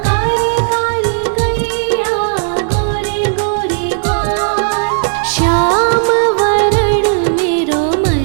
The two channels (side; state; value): left; silent; 61 dB below the other